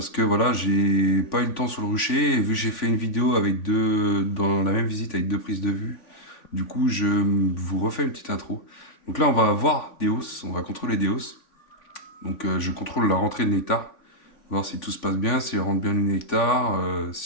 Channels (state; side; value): late; right; 3.5 ms